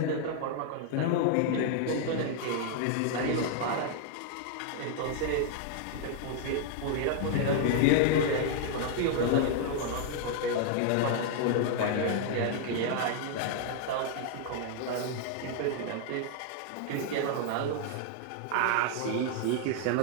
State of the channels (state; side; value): different; both; correlation 0.00